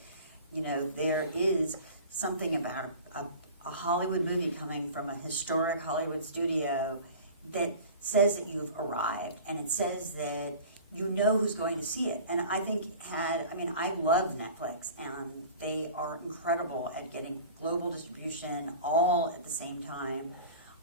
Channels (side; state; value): both; inverted; correlation -0.40